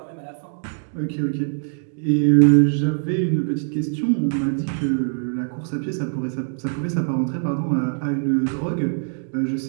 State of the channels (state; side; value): silent; left; 64 dB below the other